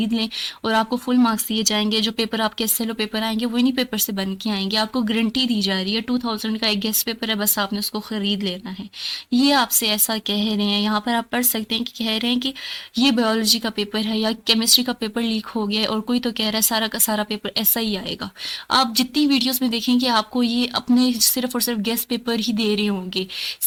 लें और आपको फुल मार्क्स दिए जाएंगे। जो पेपर आपके एसएलओ पेपर आएंगे वो इन्हीं पेपर से बन के आएंगे। आपको गारंटी दी जा रही है 2000 का एक गेस्ट पेपर है, बस आपने उसको खरीद लेना है। ये आपसे ऐसा कह रहे हैं। यहाँ पर आप पढ़ सकते हैं कि कह रहे हैं कि ये बायोलॉजी का पेपर है या केमिस्ट्री का पेपर लीक हो गया है, और कोई तो कह रहा है सारा का सारा पेपर ऐसा ही आएगा। आप जितनी वीडियोस में देखेंगे आपको ये अपने सिर्फ और सिर्फ गेस्ट पेपर ही दे रहे होंगे।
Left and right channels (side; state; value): both; identical; correlation 1.00